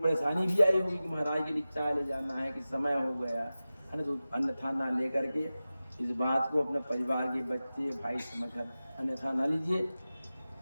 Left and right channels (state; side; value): inverted; both; correlation -0.95